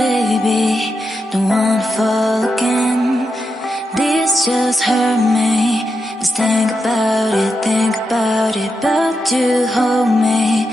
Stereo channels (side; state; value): both; normal; correlation 0.86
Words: don't wanna fall again. This just hurt me. Just think about it, but you hold me